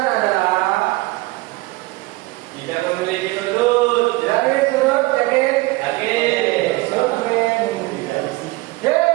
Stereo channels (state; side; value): quieter; left; 21.1 dB